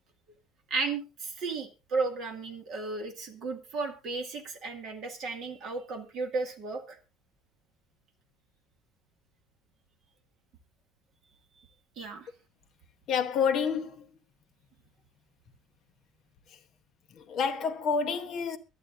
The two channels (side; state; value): both; normal; correlation 0.51